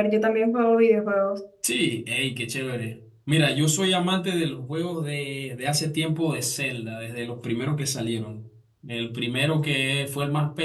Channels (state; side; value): identical; both; correlation 1.00